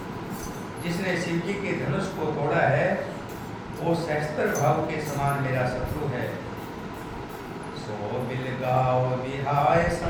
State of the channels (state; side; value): identical; both; correlation 1.00